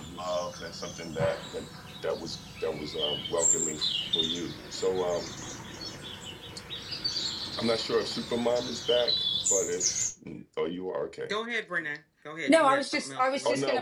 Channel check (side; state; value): both; identical; correlation 1.00